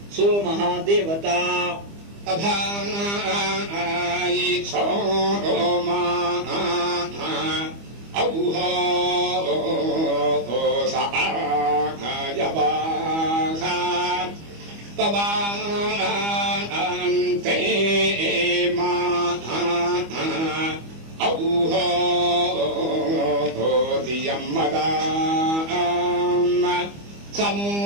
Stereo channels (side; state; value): left; late; 25 ms